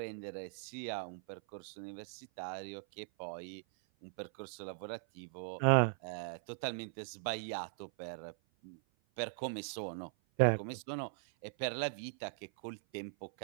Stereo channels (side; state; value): left; silent; 51 dB below the other